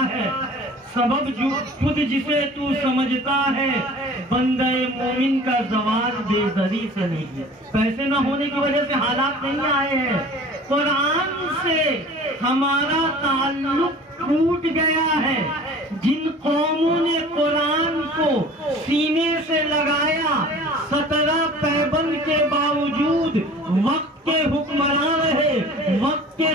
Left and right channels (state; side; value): normal; both; correlation 0.44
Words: ہے، سبب جو خود جسے تو سمجھتا ہے، بندہ مومن کا زوال بے زری سے نہیں ہے۔ پیسے نہ ہونے کی وجہ سے حالات نہیں آئے ہیں، قرآن سے ہمارا تعلق ٹوٹ گیا ہے۔ جن قوموں نے قرآن کو سینے سے لگایا، 17 پیبند کے باوجود وقت کے حکمران رہے، وقت کے